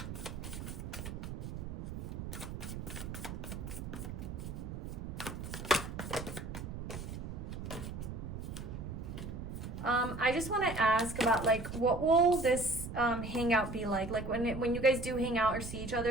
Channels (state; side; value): noise; right; rumble, 7 dB below the sound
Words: I just want to ask about like what will this hangout be like? Like when you guys do hang out or see each